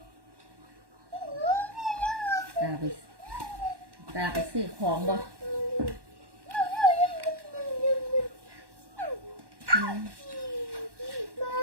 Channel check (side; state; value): left; late; 1.1 ms